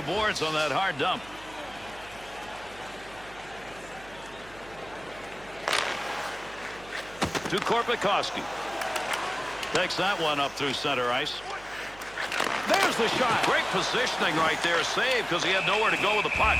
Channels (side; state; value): right; noise; hum, 21 dB below the sound